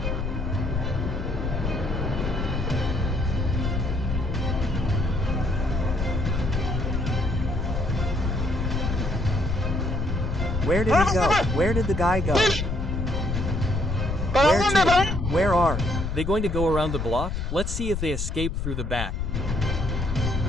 Where did he go? Where did the guy go? ¿Para Where dónde van? to? Where are? They going to go around the block? Let's see if they escape through the back.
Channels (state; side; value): noise; left; rumble, 2 dB below the sound